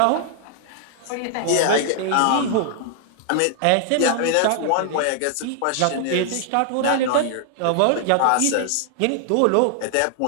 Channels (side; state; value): both; different; correlation 0.00